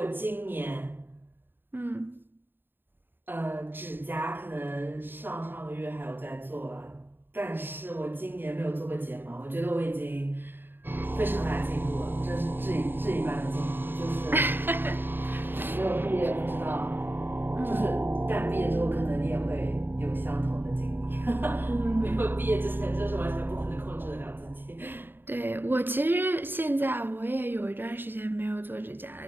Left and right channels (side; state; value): left; late; 0.097 ms